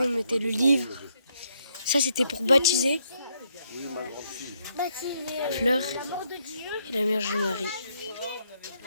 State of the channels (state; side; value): inverted; both; correlation -0.75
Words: on mettait le livre. Ça, c'était pour baptiser Fleur la mort de Dieu. et la Vierge Marie.